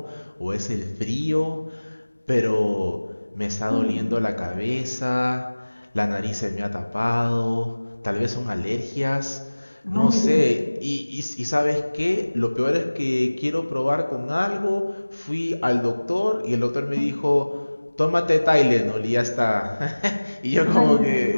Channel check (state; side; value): inverted; both; correlation -1.00